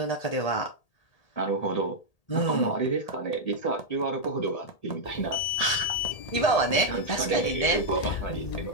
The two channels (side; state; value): right; late; 1.8 ms